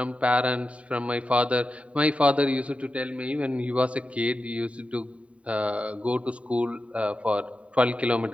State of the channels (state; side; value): late; left; 0.064 ms